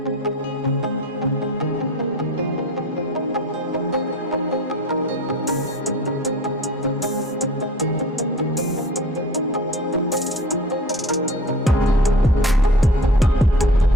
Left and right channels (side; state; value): both; normal; correlation 0.39